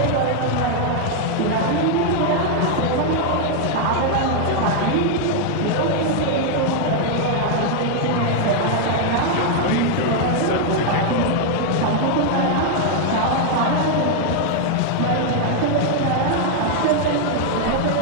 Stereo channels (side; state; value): both; different; correlation 0.00